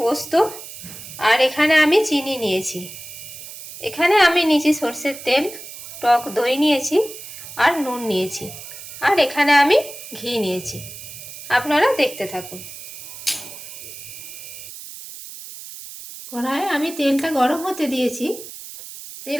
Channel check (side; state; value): right; noise; hiss, 13 dB below the sound